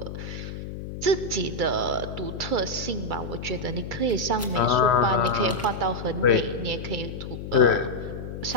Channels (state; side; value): noise; left; hum, 8 dB below the sound